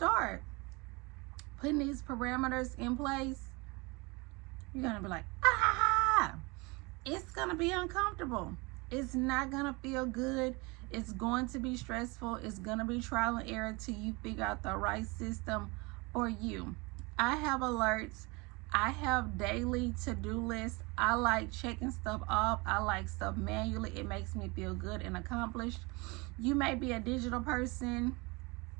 putting these parameters in place, you're going to be like, it's going to be uncomfortable. It's not going to feel good. It's going to be stressful. It's going to be trial and error till you figure out the right system for you. I have alerts. I have daily to-do lists. I like checking stuff off. I like stuff manually. It makes me feel good and accomplished. You may be a digital person.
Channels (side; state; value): left; quieter; 26.6 dB